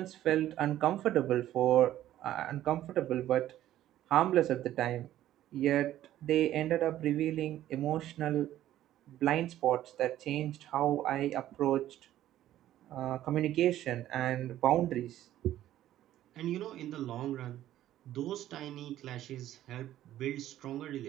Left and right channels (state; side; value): quieter; left; 13.1 dB